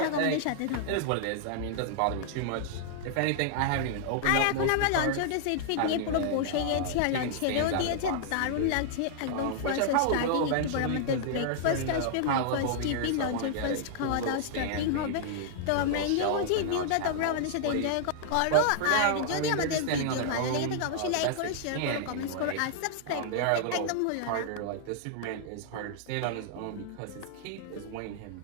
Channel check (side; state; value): both; different; correlation -0.01